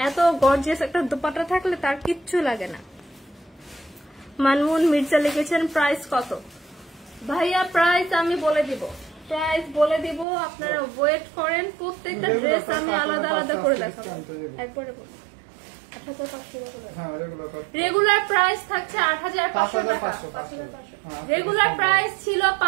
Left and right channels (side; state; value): left; drops out; at 10.2 s